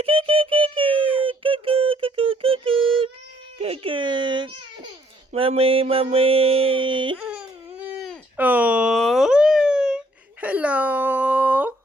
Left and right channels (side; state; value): both; normal; correlation 0.66